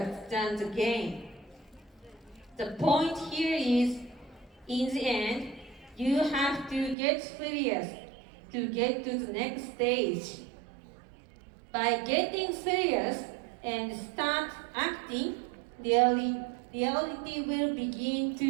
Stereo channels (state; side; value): drops out; left; at 7.0 s